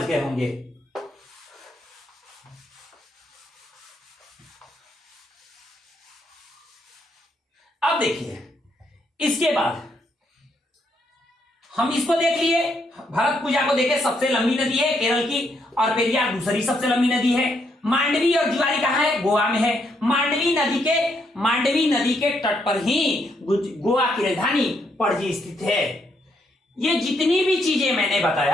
गए होंगे। अब देखिए, इसके बाद हम इसको देख लिए, भरतपुजा को देखे, सबसे लंबी नदी है केरल की, और पेरियार दूसरी सबसे लंबी नदी है। मांडवी और जुआरी कहां है, गोवा में है। मांडवी नदी के तट पर ही गोवा की राजधानी पणजी स्थित है। ये जितनी भी चीजें मैंने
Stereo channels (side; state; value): both; normal; correlation 0.75